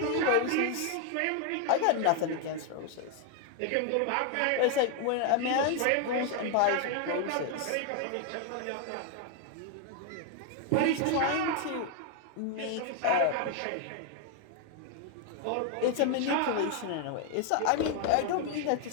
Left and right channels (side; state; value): both; different; correlation 0.01